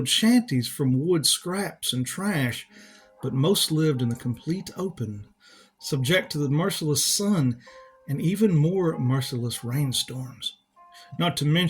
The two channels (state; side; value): identical; both; correlation 1.00